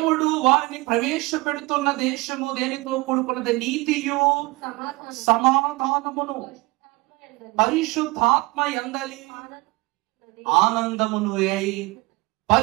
వారిని ప్రవేశపెడుతున్న దేశము దేనితో కూడుకున్నది? నీతియు సమాధానమును పరిశుద్ధాత్మ యందలి ఆనందమును అయి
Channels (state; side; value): quieter; left; 23.1 dB